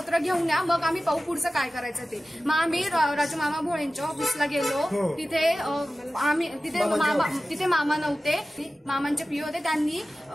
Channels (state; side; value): normal; both; correlation 0.95